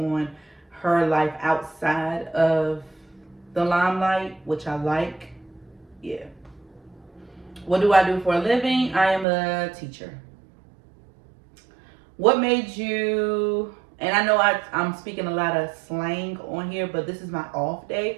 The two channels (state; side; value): drops out; left; at 9.2 s